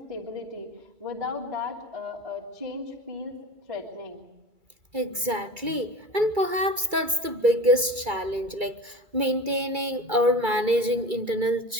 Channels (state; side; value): late; left; 2.3 ms